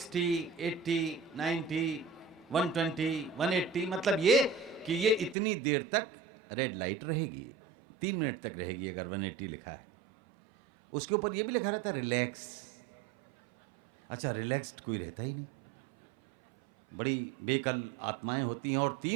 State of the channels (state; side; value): drops out; left; at 5.4 s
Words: 80, 90, 120, 180। मतलब ये कि ये इतनी देर तक रेड लाइट रहेगी, 3 मिनट तक रहेगी अगर 180 लिखा है। उसके ऊपर ये भी लिखा रहता है रिलैक्स। अच्छा, रिलैक्स्ड कोई रहता ही नहीं। बड़ी बेकल आत्माएं होती हैं और